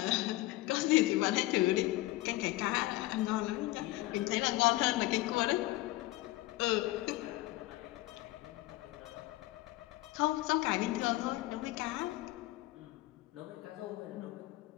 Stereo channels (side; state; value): right; quieter; 18.3 dB